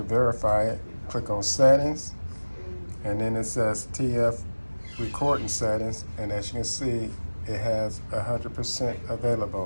verify it. Click on Settings, and then it says TF Recording Settings, and as you can see, it has 100%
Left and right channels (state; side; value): inverted; both; correlation -1.00